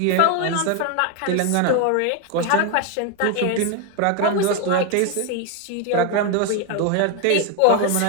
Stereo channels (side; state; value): both; different; correlation 0.01